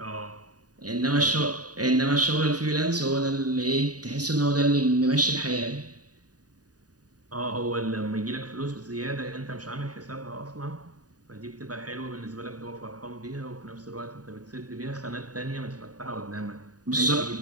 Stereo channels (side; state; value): left; late; 0.68 ms